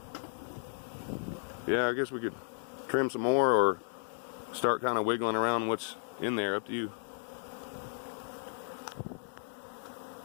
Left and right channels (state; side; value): silent; right; digital silence